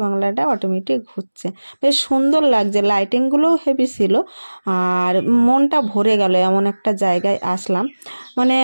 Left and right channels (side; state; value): both; inverted; correlation -1.00